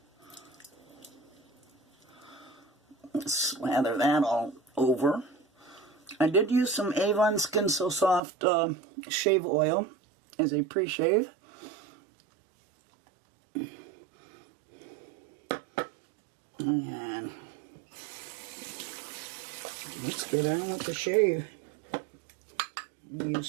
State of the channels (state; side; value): drops out; left; at 8.2 s